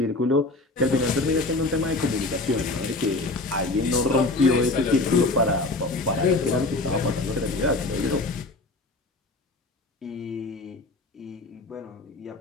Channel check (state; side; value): quieter; right; 3.0 dB